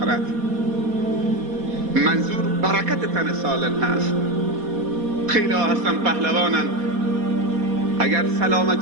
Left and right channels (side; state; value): left; late; 4.2 ms